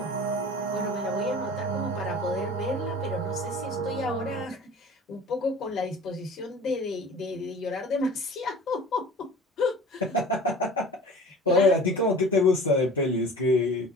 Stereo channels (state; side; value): normal; both; correlation 0.42